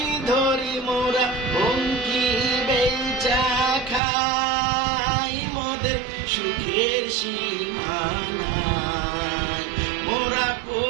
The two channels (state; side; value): drops out; left; at 4.0 s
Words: ধরি মোরা পঙ্খী বেচা খাই মোদের সুখের সীমানায় মোরা